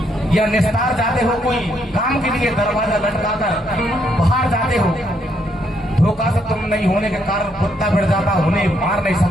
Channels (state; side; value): normal; both; correlation 0.73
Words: या निस्तार जाते हो कोई काम के लिए, दरवाजा लटकाकर बाहर जाते हो, धोखा से तुम नहीं होने के कारण कुत्ता भिड़ जाता, उन्हें मार नहीं